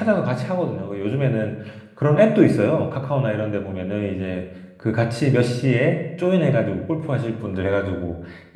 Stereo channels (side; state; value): both; identical; correlation 1.00